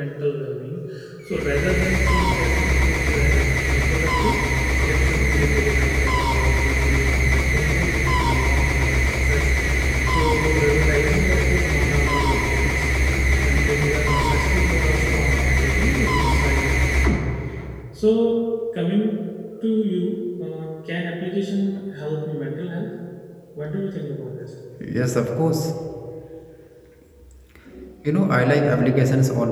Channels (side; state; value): both; identical; correlation 1.00